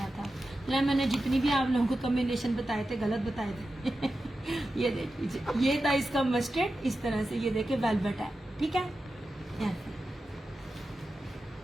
था। मैंने जितनी भी आप लोगों को कॉम्बिनेशन बताए थे गलत बताए थे। ये देख लीजिए, ये था इसका मस्टर्ड, इस तरह से। ये देखिए वेलवेट है। ठीक है,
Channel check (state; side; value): normal; both; correlation 0.92